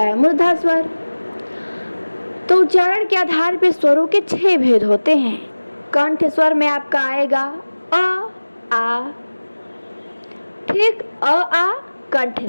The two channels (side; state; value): both; inverted; correlation -1.00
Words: मूर्धा स्वर। तो उच्चारण के आधार पर स्वरों के 6 भेद होते हैं। कंठ स्वर में आपका आएगा अ, आ, ठीक, अ, आ कंठ